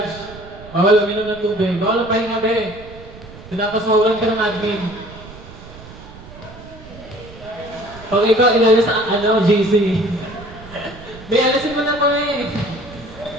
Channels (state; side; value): noise; right; rumble, 17 dB below the sound